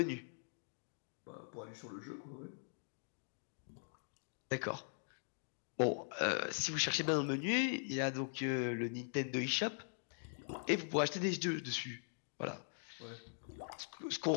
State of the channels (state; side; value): silent; right; digital silence